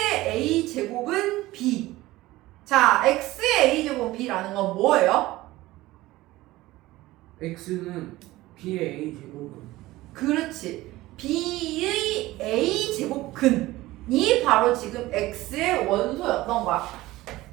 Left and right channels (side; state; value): left; quieter; 17.9 dB